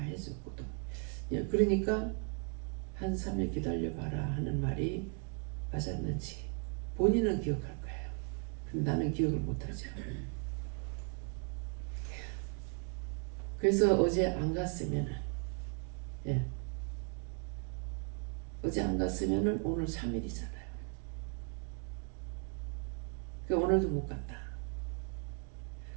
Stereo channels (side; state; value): left; quieter; 36.4 dB